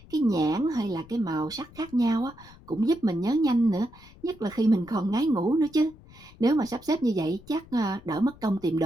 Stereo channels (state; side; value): noise; left; rumble, 22 dB below the sound